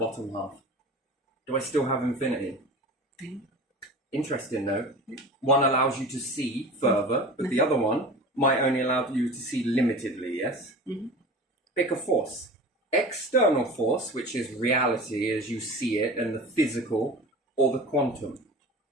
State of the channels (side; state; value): both; normal; correlation 0.35